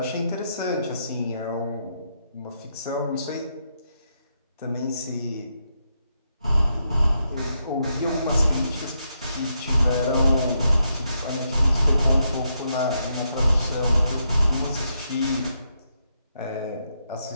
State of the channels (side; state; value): both; inverted; correlation -0.81